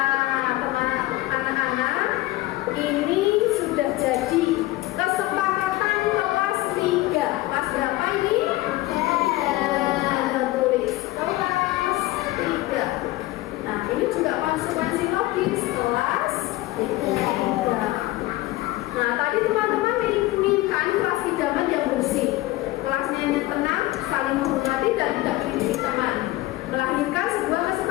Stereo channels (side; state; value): right; quieter; 18.1 dB